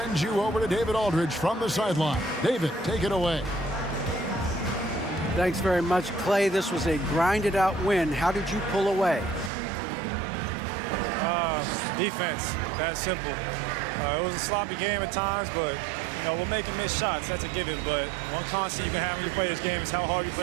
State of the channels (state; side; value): drops out; left; at 9.5 s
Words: you over to David Aldridge from the sideline. David, take it away. Thanks very much, Clay. This was a grinded-out win. How did you pull away? Defense. That's simple. It was a sloppy game at times, but, you know, we're making missed shots. That's a given. But one constant you can have when you play this game is how hard you